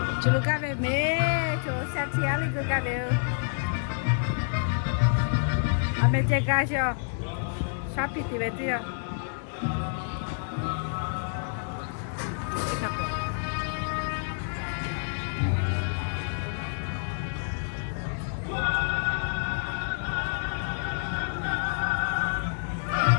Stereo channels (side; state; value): right; silent; digital silence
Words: 程。就咖啡没，就3天那个咖啡，还没再干些。Sapi tiba itu ya.